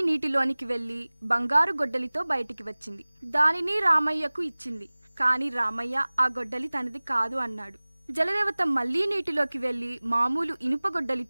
నీటిలోనికి వెళ్లి బంగారు గొడ్డలితో బయటికి వచ్చింది. దానిని రామయ్యకు ఇచ్చింది. కాని రామయ్య ఆ గొడ్డలి తనది కాదు అన్నాడు. జలదేవత మళ్లీ నీటిలోకి వెళ్లి మామూలు ఇనుప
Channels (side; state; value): both; inverted; correlation -1.00